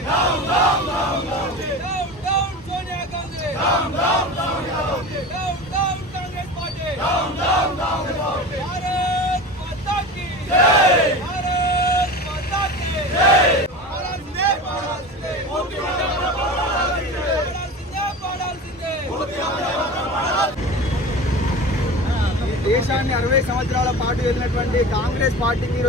down down down down down Sonia Gandhi, down down down down down Congress party. Down down down Bharat Mata కీ జై. భారత్ మాతా కీ జై. పాడాల్సిందే, పాడాల్సిందే, పూర్తి వందే మాతరం పాడాల్సిందే. పాడాల్సిందే. పూర్తి వందే మాతరం పాడాల్సిందే. దేశాన్ని 60 సంవత్సరాల పాటు వెళ్ళినటువంటి కాంగ్రెస్ పార్టీకి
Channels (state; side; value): normal; both; correlation 0.32